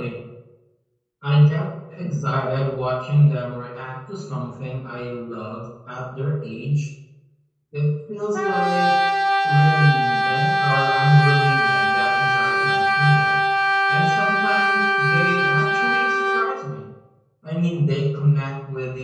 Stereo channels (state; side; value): identical; both; correlation 1.00